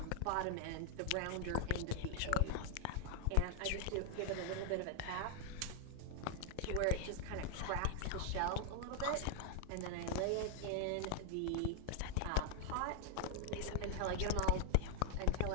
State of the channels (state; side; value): different; both; correlation 0.00